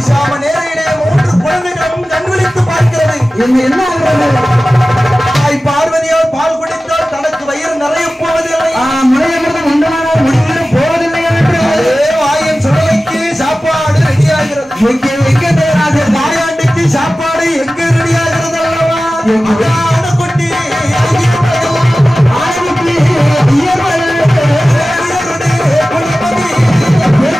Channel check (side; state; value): both; normal; correlation 0.96